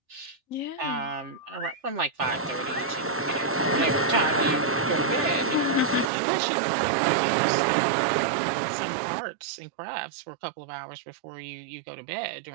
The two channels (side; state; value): left; drops out; at 6.1 s